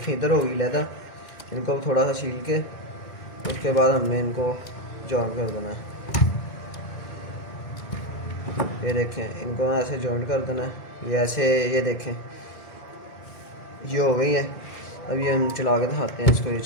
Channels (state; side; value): late; right; 2.0 ms